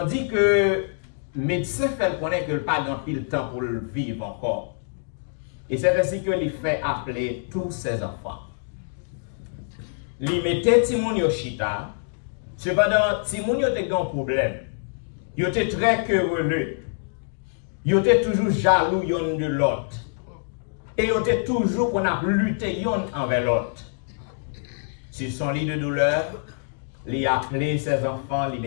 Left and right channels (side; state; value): right; silent; digital silence